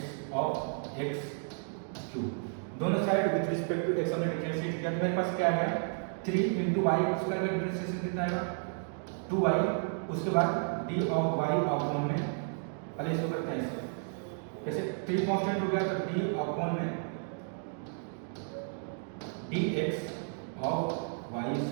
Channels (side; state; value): left; silent; 56 dB below the other